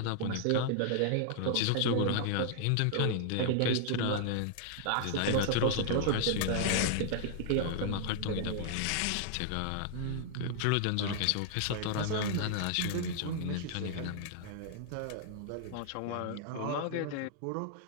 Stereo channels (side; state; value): both; different; correlation -0.01